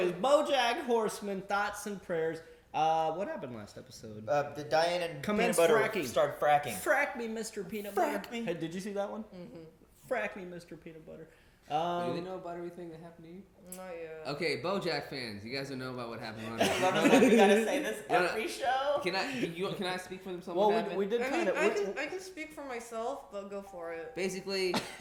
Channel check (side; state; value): both; identical; correlation 1.00